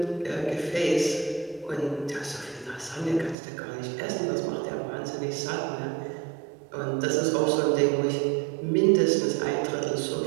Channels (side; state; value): left; drops out; at 3.4 s